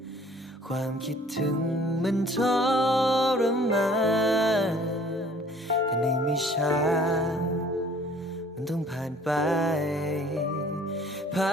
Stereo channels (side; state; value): both; normal; correlation 0.54